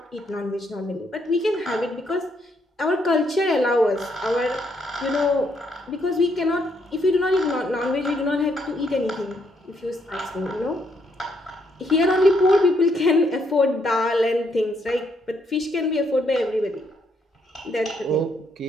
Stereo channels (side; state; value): both; normal; correlation 0.74